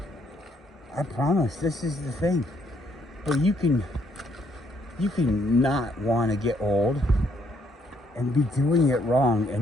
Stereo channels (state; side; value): normal; both; correlation 0.70